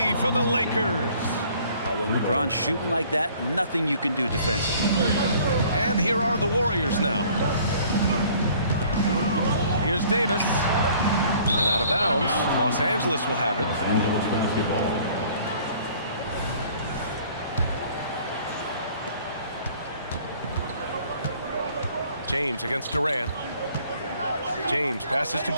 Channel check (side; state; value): both; inverted; correlation -0.55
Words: for the Lakers. When LeBron's shooting like that, nothing you can do defensively. And here are the Warriors now. Here's Davis. And out of bounds. Los Angeles will have it. James against Durant. James passes to